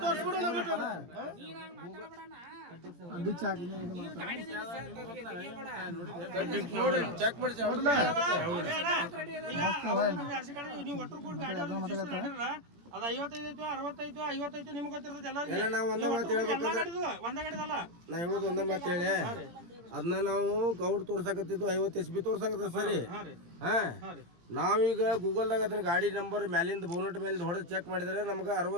ತೋರಿಸ್ಬಿಡು ನಾವು ಚೆಕ್ ಮಾಡಿ ನೀವು ಒಟ್ಟರು ಕೂಡ ಗಾಡಿ ಅದು 55 65 55 ನಿಮ್ಗೆ ಗೊತ್ತಿರ್ತದೆ ಎಲ್ಲ ನಾವು ಒಂದೇ ಮಾತು ಹೇಳ್ಬೇಕಂದ್ರೆ ಒಂದೇ ಗಾಡಿದಲ್ಲ ನಾ ಹೇಳೋದು ಒಂದೇ ಮಾತು ಹೇಳಿ ಅದನ್ನ ನಾವು ಗೌಡ್ ತೋರ್ಸಕತ್ತಿದ್ದು 50 HP ತೋರ್ಸಕತ್ತ ಸರಿ ಹಾ ನಾವೀಗ ಗೂಗಲ್ದಾಗ ಅದನ್ನ ಗಾಡಿ ನಂಬರ್ ಮ್ಯಾಲಿಂದ ಬೋನಟ್ ಮೇಲೆ ಹೊಡೆದು ಚೆಕ್ ಮಾಡಿದ್ರೆ ನಮ್ಗೆ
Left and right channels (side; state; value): left; late; 17 ms